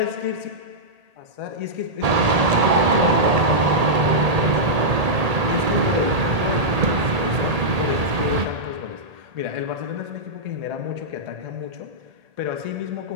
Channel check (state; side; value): late; left; 1.8 ms